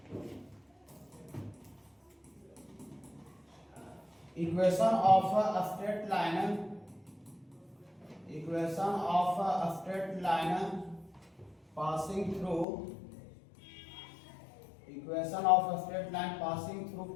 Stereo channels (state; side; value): drops out; right; at 12.7 s